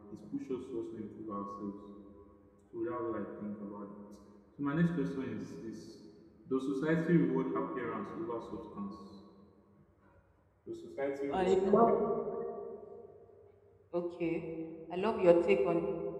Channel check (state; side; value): identical; both; correlation 1.00